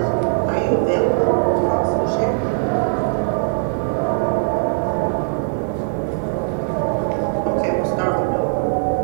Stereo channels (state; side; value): silent; left; digital silence